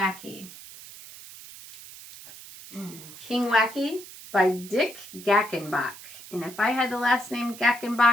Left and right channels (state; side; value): noise; right; hiss, 16 dB below the sound